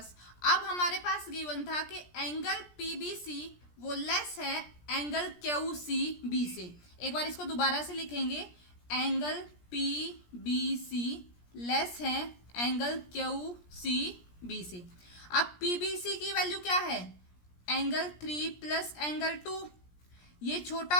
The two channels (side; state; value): right; late; 17 ms